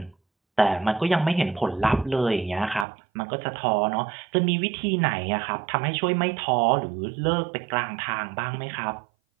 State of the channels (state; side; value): drops out; left; at 2.9 s